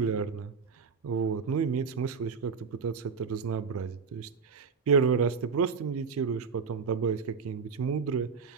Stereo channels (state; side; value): quieter; left; 5.5 dB